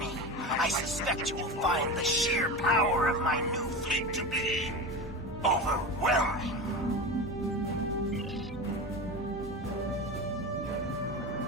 I suspect you will find the sheer power of my new fleet to be overwhelming.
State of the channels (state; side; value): normal; both; correlation 0.25